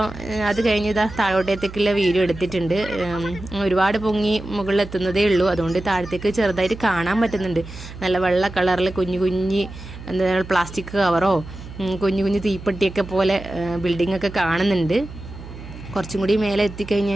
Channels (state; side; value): noise; right; hum, 14 dB below the sound